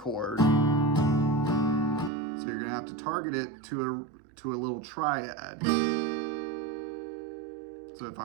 So you're gonna have to target it to a little triad. So if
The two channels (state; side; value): drops out; left; at 2.1 s